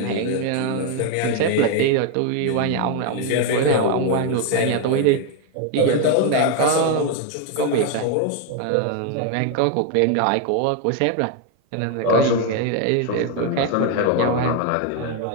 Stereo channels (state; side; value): different; both; correlation 0.01